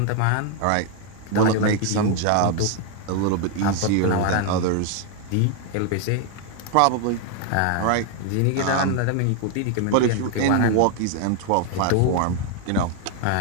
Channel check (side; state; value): both; different; correlation 0.01